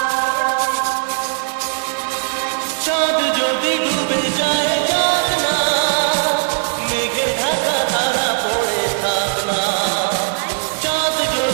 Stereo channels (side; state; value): left; silent; 59 dB below the other